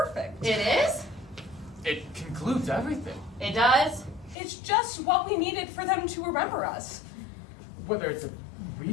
It is? It concludes everything. It does? It's just what we needed for them to remember us. Whether it's a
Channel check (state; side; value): drops out; right; at 4.4 s